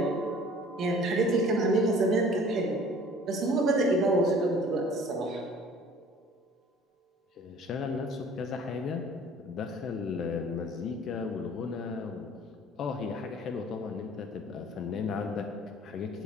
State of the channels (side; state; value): both; normal; correlation 0.50